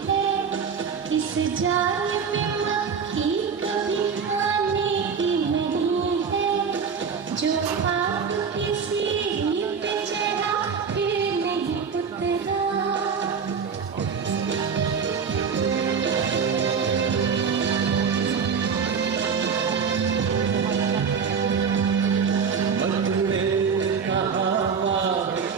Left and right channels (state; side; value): quieter; left; 6.2 dB